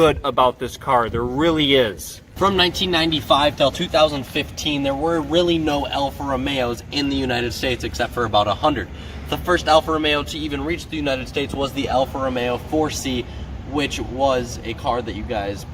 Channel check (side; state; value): both; identical; correlation 1.00